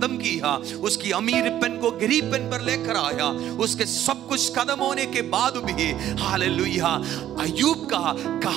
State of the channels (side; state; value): left; quieter; 11.9 dB